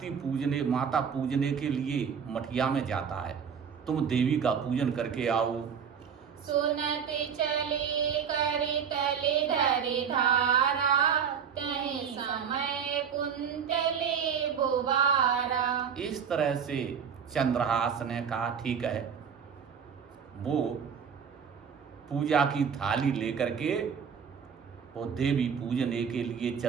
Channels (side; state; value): left; quieter; 7.1 dB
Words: पूजने, माता पूजने के लिए मठिया में जाता है। तुम देवी का पूजन करके आओ। सुनत चले करि तले धरि धारा, तहि समय कुंतले बुबारा। इस तरह से चंद्रहास ने कहा ठीक है। वो पूजा की थाली लेकर के वो देवी पूजने के लिए